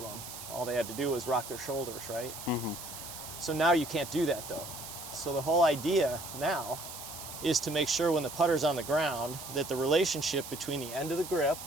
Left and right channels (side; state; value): right; noise; hiss, 11 dB below the sound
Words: All they had to do was rock their shoulders, right? So now you can't do that though. So the whole idea now is to make sure when the putter's on the ground that the relationship between the end of the grip